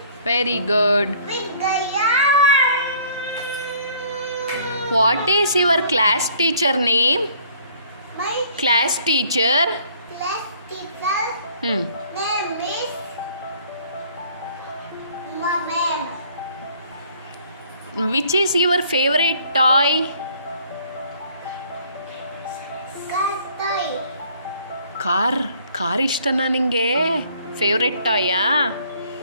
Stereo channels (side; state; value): both; inverted; correlation -0.58